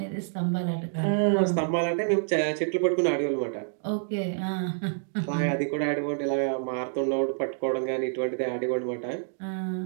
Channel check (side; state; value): left; silent; digital silence